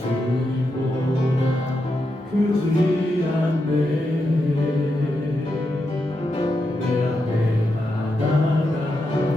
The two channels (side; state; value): both; normal; correlation 0.85